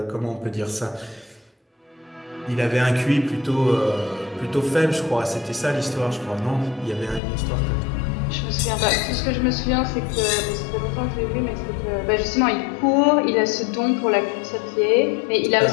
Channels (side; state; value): right; drops out; at 7.2 s